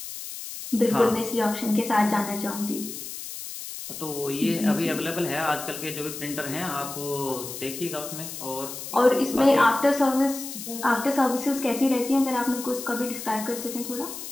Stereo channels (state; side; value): noise; left; hiss, 9 dB below the sound